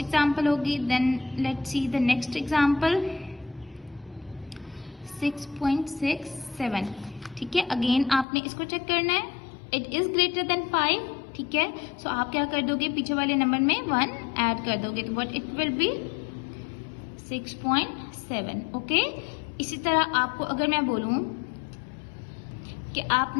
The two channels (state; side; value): drops out; right; at 8.2 s